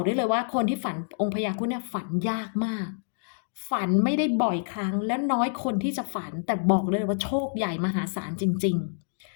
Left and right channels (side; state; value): right; silent; digital silence